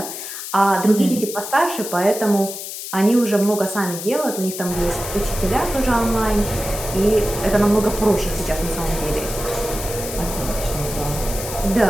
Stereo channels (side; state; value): left; noise; hiss, 8 dB below the sound